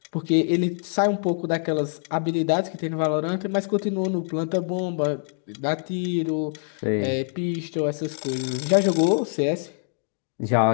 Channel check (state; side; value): silent; right; 62 dB below the other